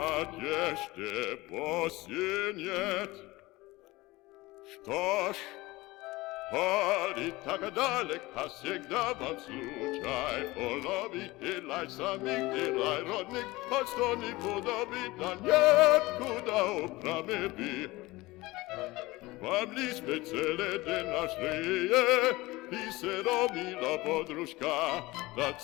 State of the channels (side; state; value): right; quieter; 20.5 dB